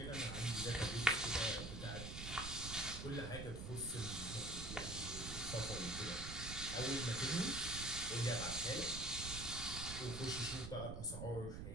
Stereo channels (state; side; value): noise; right; rumble, 6 dB below the sound